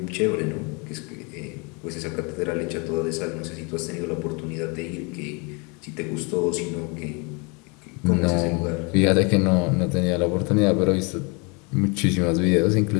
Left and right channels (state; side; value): quieter; right; 31.4 dB